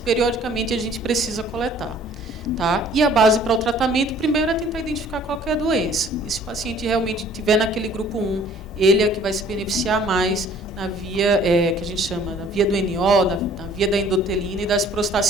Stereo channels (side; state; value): both; normal; correlation 0.55